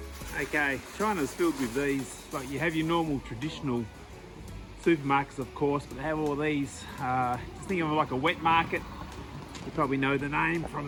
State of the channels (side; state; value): both; identical; correlation 1.00